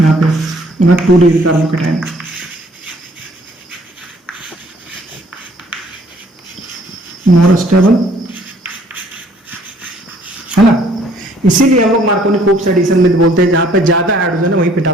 पे 2 डिग्री कार्बोकेटाइन, मोर स्टेबल, है ना। इसीलिए हम लोग मार्कोनिकोव्स एडिशन में बोलते हैं जहां पे ज्यादा हाइड्रोजन है वहीं पे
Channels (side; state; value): both; normal; correlation 0.60